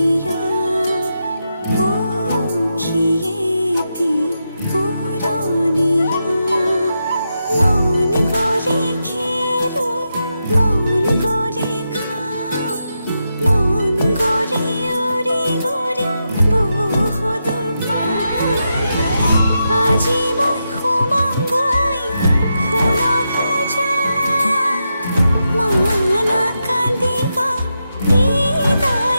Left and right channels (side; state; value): both; inverted; correlation -0.86